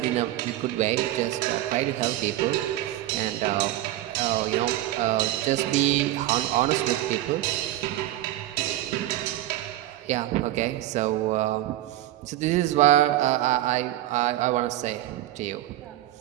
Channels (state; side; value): quieter; left; 14.8 dB